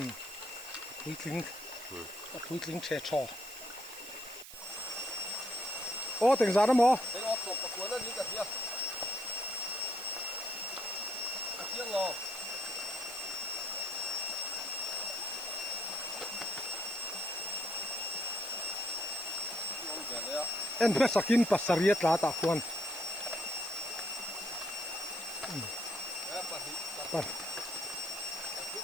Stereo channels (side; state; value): right; noise; hiss, 14 dB below the sound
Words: quý thính trẻ trò ô tiền giá đó mò cái ót sồn có cuốn nó đi cả kia tiếng ngò en pe sakin pasariat la ta khuan